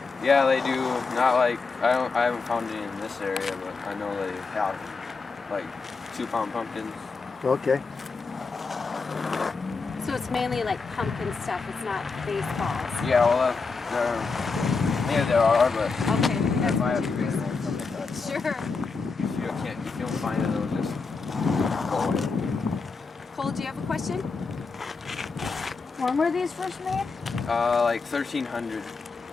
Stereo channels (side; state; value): right; quieter; 4.4 dB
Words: Yeah, they do. Not like I haven't found any in this area, but I know they have like 2-pound pumpkins. okay. So it's mainly like pumpkin stuff, it's not baseballs. Yeah, well, there are, but Okay. if I have to be something like that. Sure. If you don't find it, it'll just go away. Cole, do you have a question? When were these first made? Like 1,300.